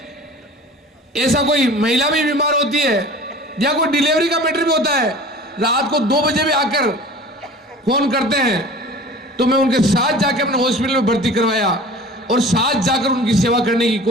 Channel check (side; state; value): both; normal; correlation 0.42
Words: ऐसा कोई महिला भी बीमार होती है या कोई डिलीवरी का मैटर भी होता है, रात को 2 बजे भी आकर फोन करते हैं, तो मैं उनके साथ जाकर अपने हॉस्पिटल में भर्ती करवाया और साथ जाकर उनकी सेवा करने की